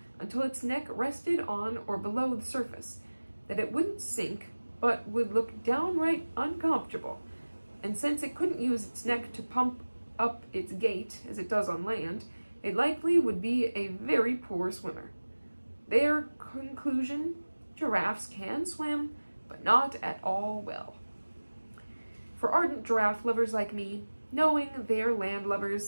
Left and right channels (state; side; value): inverted; both; correlation -1.00